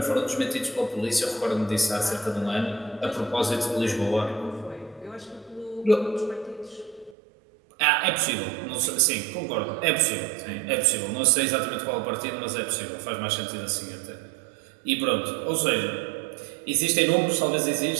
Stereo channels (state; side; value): drops out; left; at 7.2 s